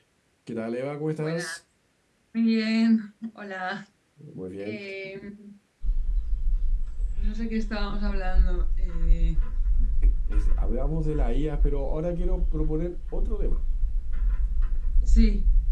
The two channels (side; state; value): both; identical; correlation 1.00